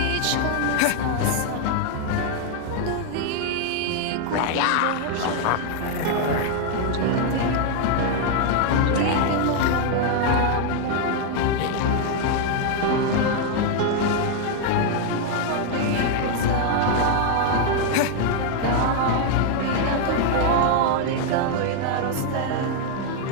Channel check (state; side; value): different; both; correlation 0.00